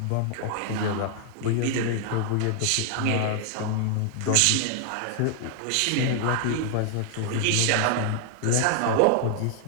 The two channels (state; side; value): different; both; correlation 0.00